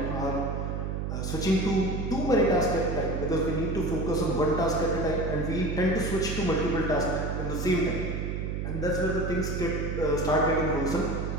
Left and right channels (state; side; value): noise; right; hum, 2 dB below the sound